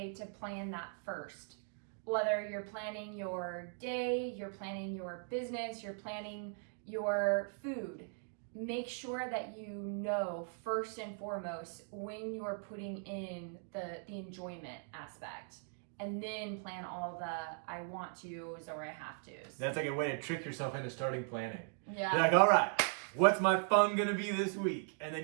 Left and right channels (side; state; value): left; silent; 52 dB below the other